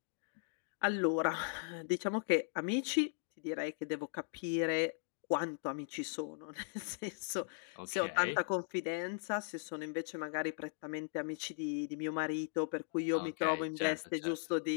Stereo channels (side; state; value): right; silent; digital silence